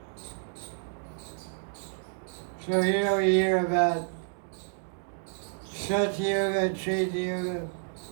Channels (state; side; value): silent; left; digital silence